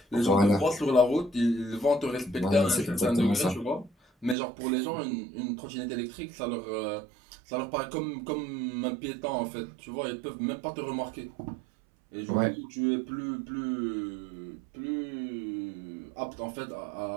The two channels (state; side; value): drops out; left; at 4.4 s